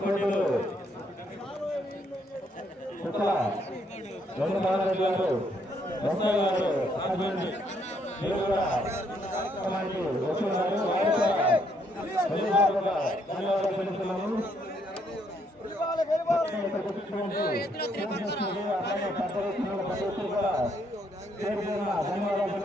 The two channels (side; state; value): both; normal; correlation 0.72